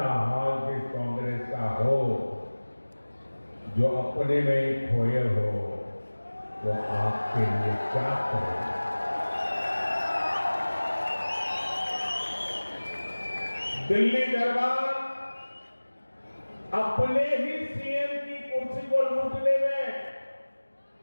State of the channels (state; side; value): inverted; both; correlation -1.00